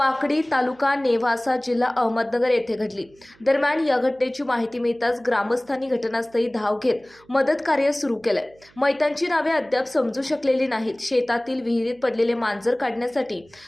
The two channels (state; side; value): noise; right; hum, 29 dB below the sound